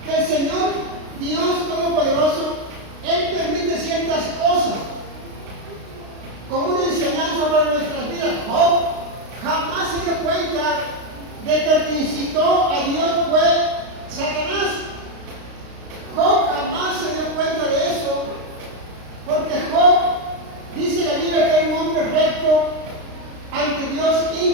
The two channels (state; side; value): late; left; 32 ms